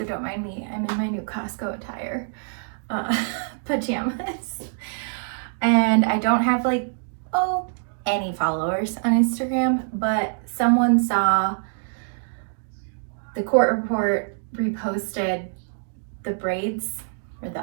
don't mind me. I'm in my new Costco attire, pajamas. And I don't have like, any followers on Instagram, but someone saw the court report reposted the braids or the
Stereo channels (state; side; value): silent; left; digital silence